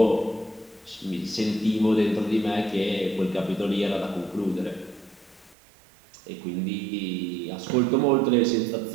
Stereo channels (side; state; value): left; drops out; at 5.6 s